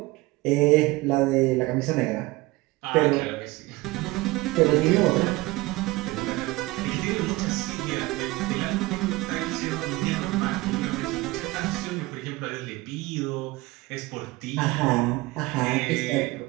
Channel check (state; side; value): quieter; left; 20.8 dB